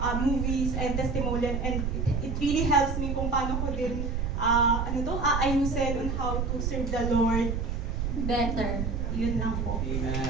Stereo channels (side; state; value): right; noise; rumble, 1 dB below the sound